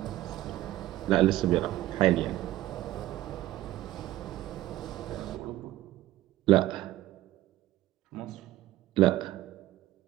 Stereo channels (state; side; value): quieter; left; 15.2 dB